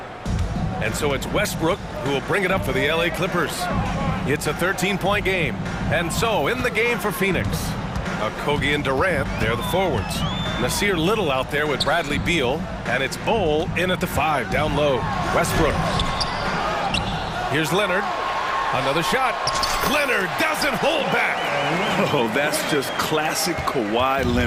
And so it's Westbrook who will bring it up for the LA Clippers. It's a 13-point game. And so in the game for Phoenix, Kogi and Durant, they're the forwards. Nasir Little out there with Bradley Beal, and it's Bol in at the 5, down low. Westbrook. Here's Leonard. Another shot. Leonard doesn't hold back. Oh, that's just classic Kawhi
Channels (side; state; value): both; identical; correlation 1.00